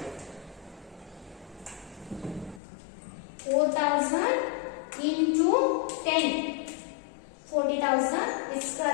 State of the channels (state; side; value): drops out; right; at 2.6 s